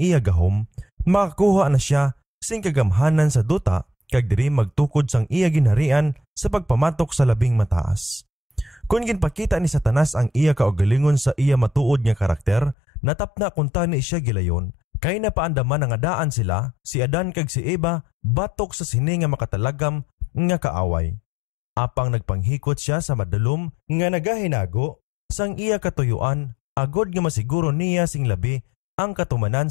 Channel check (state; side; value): drops out; right; at 12.8 s